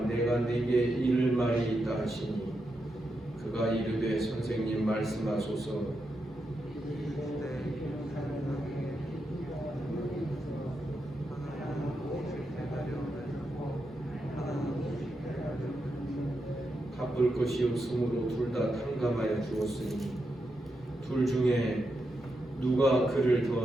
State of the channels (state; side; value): normal; both; correlation 0.86